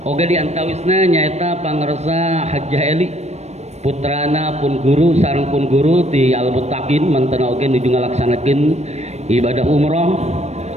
oge di antawisna nyaeta pangresa Hajjah Eli putrana pun guru sareng pun guru di Al Muttaqin manten oge nuju ngalaksanakeun ibadah umroh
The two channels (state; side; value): late; left; 0.32 ms